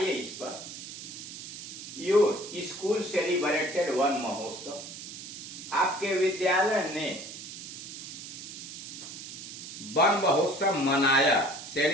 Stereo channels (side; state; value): right; noise; hiss, 11 dB below the sound